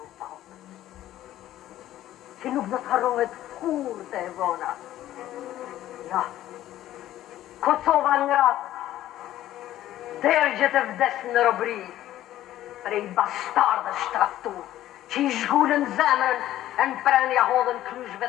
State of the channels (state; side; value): quieter; right; 13.5 dB